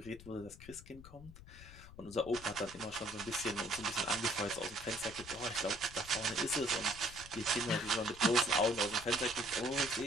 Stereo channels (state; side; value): noise; left; rumble, 17 dB below the sound